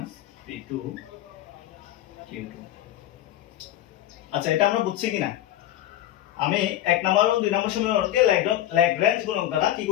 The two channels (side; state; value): right; quieter; 13.2 dB